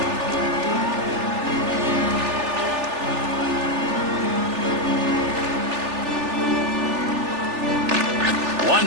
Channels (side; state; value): left; late; 3.4 ms